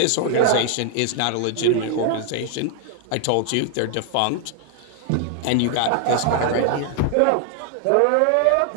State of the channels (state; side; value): different; both; correlation 0.00